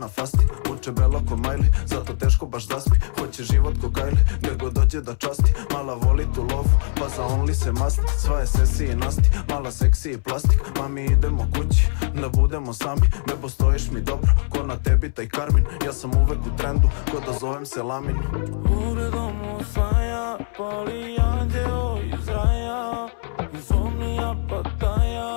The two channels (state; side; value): silent; right; 64 dB below the other